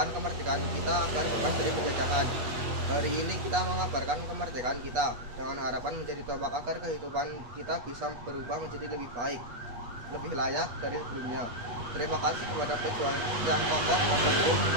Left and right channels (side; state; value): left; late; 8.3 ms